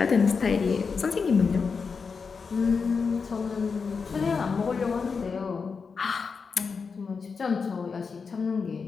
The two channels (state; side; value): quieter; right; 5.3 dB